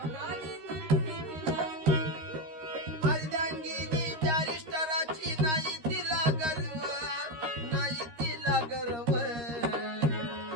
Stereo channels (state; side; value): late; left; 13 ms